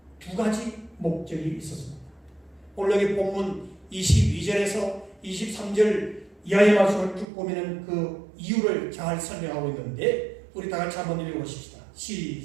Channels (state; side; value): drops out; left; at 7.2 s